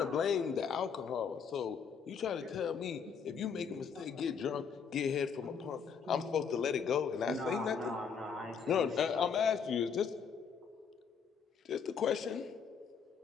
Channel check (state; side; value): quieter; right; 6.5 dB